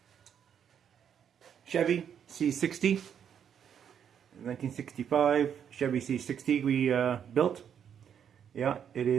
Chevy C60, 1965 Chevy C60 we built. Yeah, it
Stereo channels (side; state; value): left; quieter; 8.4 dB